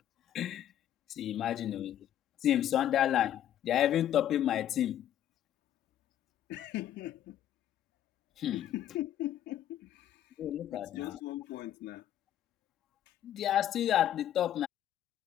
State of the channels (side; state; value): right; quieter; 11.3 dB